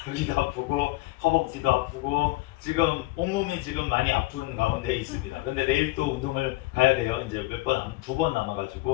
여기도 아프고 허벅지도 아프고 지금 온몸이 지금 많이 아픈 가운데 있습니다. 근데 내일 또 운동을 가야 돼요. 이제 두 번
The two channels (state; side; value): quieter; right; 19.7 dB